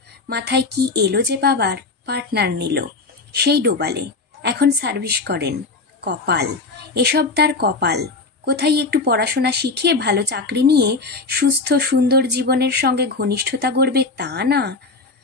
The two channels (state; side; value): quieter; right; 3.8 dB